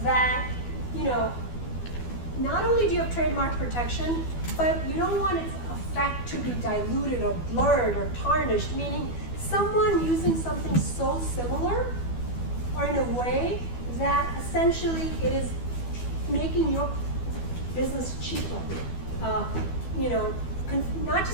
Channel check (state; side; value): late; right; 12 ms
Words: that, not only do you have trademark protection, but you don't want its effect to be diluted or blurred or tarnished, meaning someone using something so similar or in a way that essentially it is making your business cheaper. Not